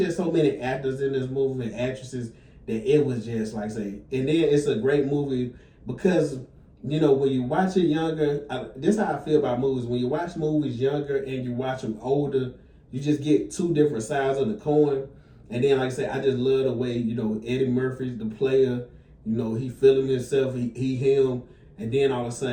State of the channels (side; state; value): both; identical; correlation 1.00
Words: so many actors in this movie and actresses that it was just, like I say, and then it's a great movie because, when you watch it younger, this is how I feel about movies. When you watch movies younger and you watch them older, you just get two different sides of the coin. And then, like I said, I just love the way, Eddie Murphy's the player, he feeling himself, he him, and then all of a